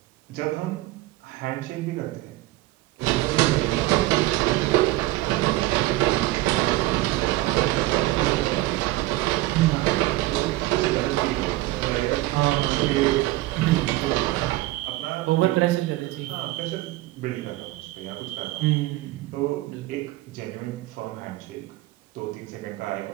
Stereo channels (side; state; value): left; quieter; 17.8 dB